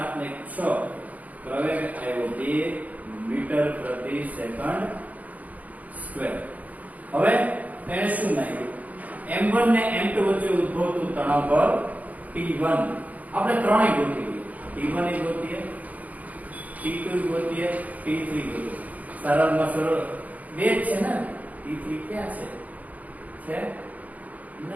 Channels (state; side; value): late; left; 0.075 ms